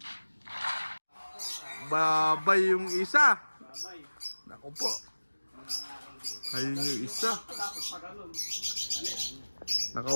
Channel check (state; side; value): inverted; both; correlation -1.00